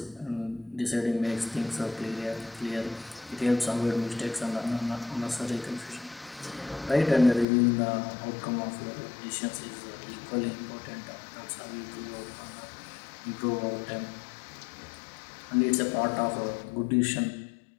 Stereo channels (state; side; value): drops out; right; at 7.5 s